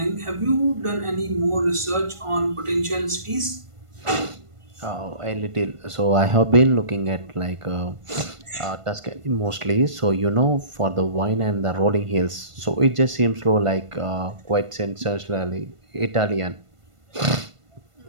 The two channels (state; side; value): late; left; 1.5 ms